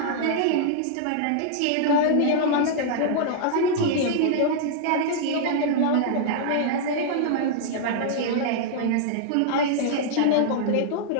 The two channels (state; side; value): different; both; correlation -0.01